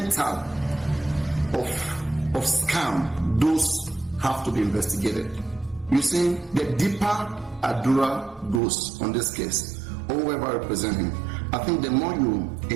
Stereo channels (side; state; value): left; drops out; at 8.6 s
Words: of scam? Those have to be investigated. You see, the deeper Adura goes on this case, or whoever represents him, I think the more you